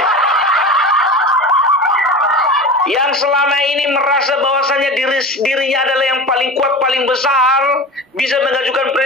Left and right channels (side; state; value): both; normal; correlation 0.31